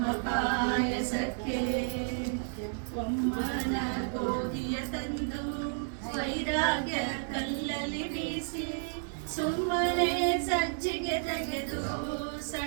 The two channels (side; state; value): left; silent; digital silence